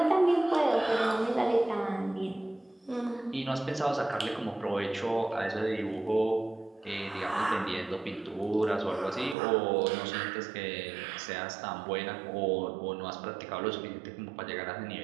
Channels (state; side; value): drops out; left; at 9.3 s